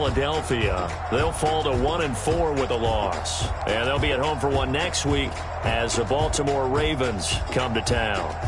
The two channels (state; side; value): identical; both; correlation 1.00